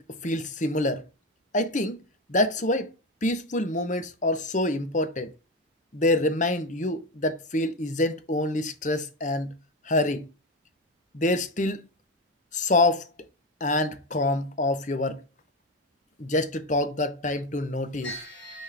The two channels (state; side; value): normal; both; correlation 0.16